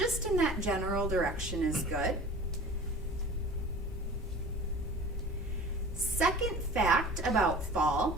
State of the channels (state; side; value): normal; both; correlation 0.40